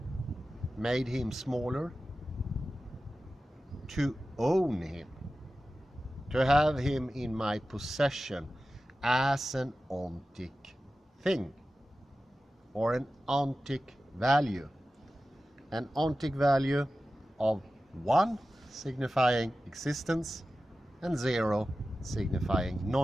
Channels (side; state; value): both; normal; correlation 0.94